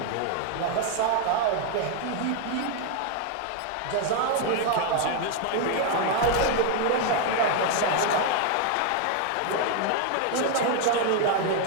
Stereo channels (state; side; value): different; both; correlation 0.00